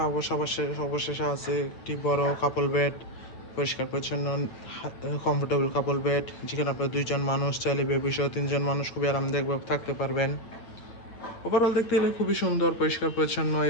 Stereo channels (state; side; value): late; right; 8.7 ms